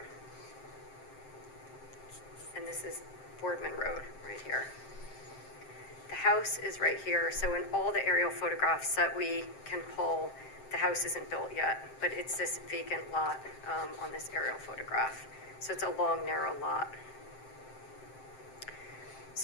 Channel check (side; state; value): right; late; 7.6 ms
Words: And this is Boardman Road right here. The house is right here, so in all the aerial photographs that we can pull, the house isn't built yet, but it's this vacant lot on this aerial photograph. So it's a long, narrow lot.